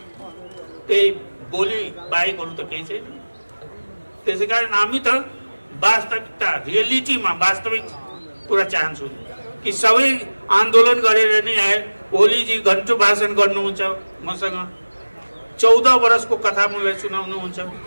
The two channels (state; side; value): inverted; both; correlation -1.00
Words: त्यही बोली बाहेक अरू त केही छैन। त्यसै कारण हामी त वास्तविकता, रियलिटीमा वास्तविक कुरा चाहन्छु कि सबै आन्दोलन गरेर नै आए। ओलीजी घन्टो भाषण गर्नुहुन्छ मसँग, 14 वर्षको कथा मलाई सुनाउनुहुन्छ,